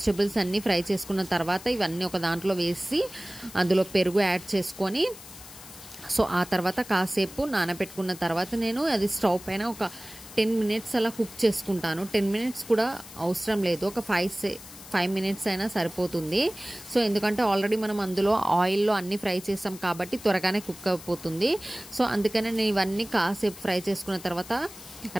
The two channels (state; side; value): noise; left; hiss, 17 dB below the sound